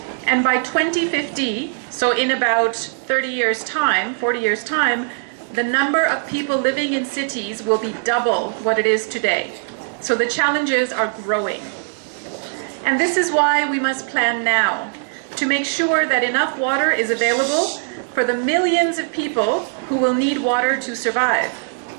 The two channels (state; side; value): silent; left; digital silence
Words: And by 2050, so in about 30 years' time, 40 years' time, the number of people living in cities will be double what it is today. So the challenges are growing. And this is why we must plan now, to make sure that enough water is available for the millions of people who will need water to survive.